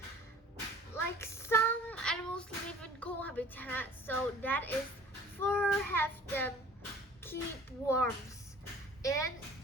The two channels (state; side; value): normal; both; correlation 0.48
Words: Like some animals live in cool habitat, so that is fur have them keep warmth in